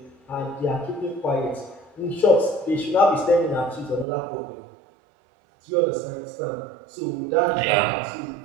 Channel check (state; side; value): drops out; left; at 4.0 s